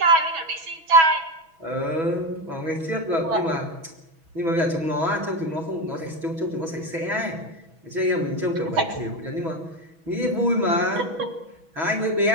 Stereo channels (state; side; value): late; left; 6.1 ms